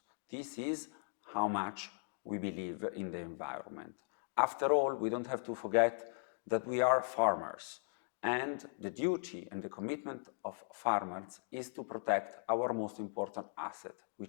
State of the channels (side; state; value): right; silent; digital silence